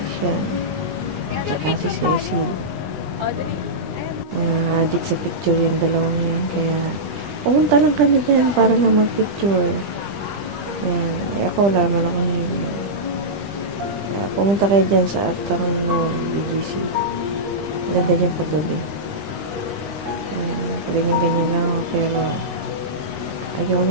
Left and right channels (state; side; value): late; left; 20 ms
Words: yan. Tsaka si Cecil. Mga addict sa picture yung dalawang yan. Kaya pumunta lang kami dyan para lang mag-picture. Yan. Ako wala naman akong himo. Pumunta kayo dyan sa Uptown Mall, BGC. Ganda dyan paggabi. Ayan. Ganyan-ganyan lang ako. Pero ayaw